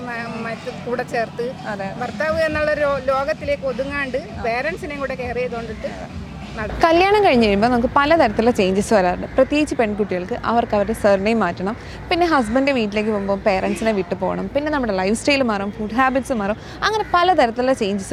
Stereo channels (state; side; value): identical; both; correlation 1.00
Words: കൂടെ ചേർത്ത് ഭർത്താവ് എന്നുള്ള ലോകത്തിലേക്ക് ഒതുങ്ങാണ്ട് പേരൻസിനെയും കൂടെ കെയർ ചെയ്തുകൊണ്ടിട്ട് കല്യാണം കഴിഞ്ഞ് കഴിയുമ്പോൾ നമുക്ക് പലതരത്തിലുള്ള ചേഞ്ചസ് വരാറുണ്ട്. പ്രത്യേകിച്ച് പെൺകുട്ടികൾക്ക് അവർക്ക് അവരുടെ സർനെയിം മാറ്റണം. പിന്നെ ഹസ്ബൻഡ് വീട്ടിലേക്ക് പോകുമ്പോൾ പേരൻസിനെ വിട്ടു പോകണം. പിന്നെ നമ്മുടെ ലൈഫ് സ്റ്റൈൽ മാറും, ഫുഡ് ഹാബിറ്റ്സ് മാറും. അങ്ങനെ പലതരത്തിലുള്ള ചേഞ്ചസ്